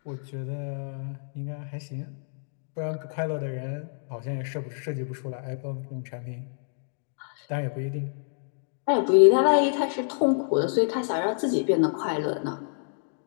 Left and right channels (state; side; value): silent; right; digital silence